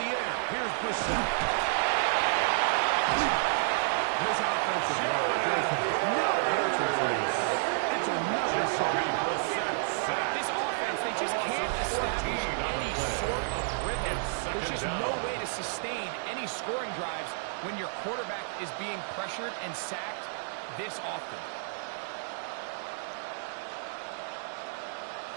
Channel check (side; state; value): left; silent; digital silence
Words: air. Here's Brissett. His offensive line. It's another Jacoby Brissett sack. This offense, they just can't establish any sort of rhythm. There's just no way to sustain any scoring drives when your quarterback is being pressured and sacked this often.